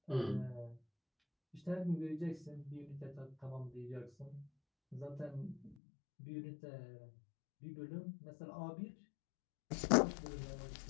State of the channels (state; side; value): drops out; right; at 5.8 s